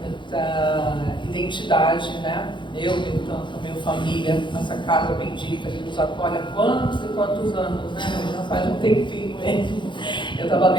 identidade, né? Eu tenho tanto, a minha família, essa casa bendita que nos acolhe há quantos e quantos anos, né? Já faz um tempinho mesmo. Eu estava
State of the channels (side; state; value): right; late; 0.23 ms